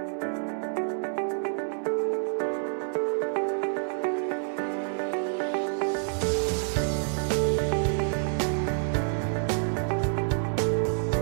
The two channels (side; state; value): left; silent; 59 dB below the other